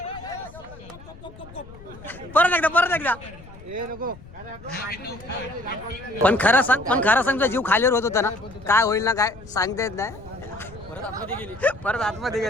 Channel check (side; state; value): left; noise; rumble, 19 dB below the sound